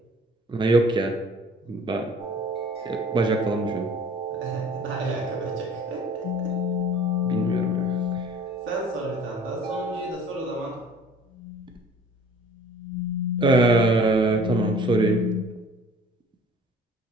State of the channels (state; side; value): normal; both; correlation 0.49